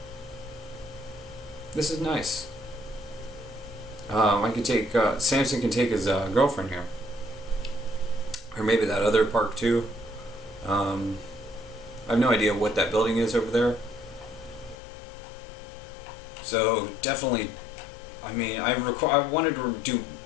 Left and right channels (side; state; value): right; drops out; at 14.8 s